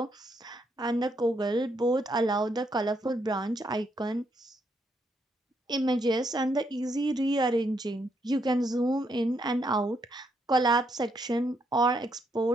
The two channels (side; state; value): both; normal; correlation 0.76